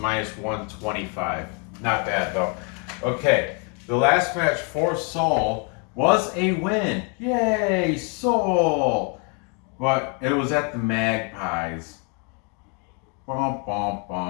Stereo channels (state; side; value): quieter; right; 34.6 dB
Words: 125. Not bad though. Okay, the last match for Seoul, was a win. Yay, Seoul! But it was at the Magpies. Bum, bum,